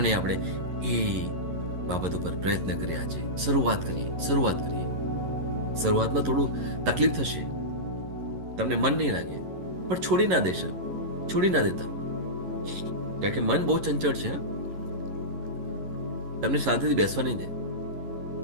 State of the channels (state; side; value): late; left; 11 ms